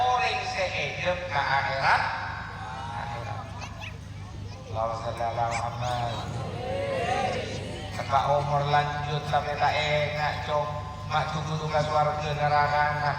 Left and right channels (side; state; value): both; identical; correlation 1.00